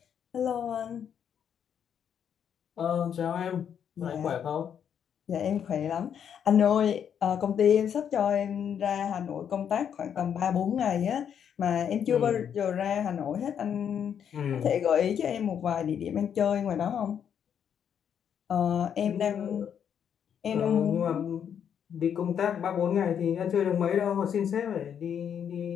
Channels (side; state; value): right; quieter; 8.4 dB